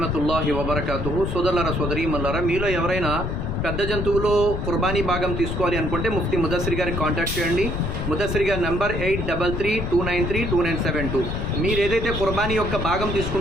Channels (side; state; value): left; noise; rumble, 3 dB below the sound